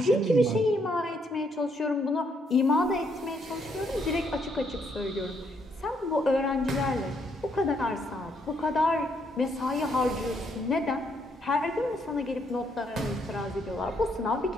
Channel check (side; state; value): both; normal; correlation 0.73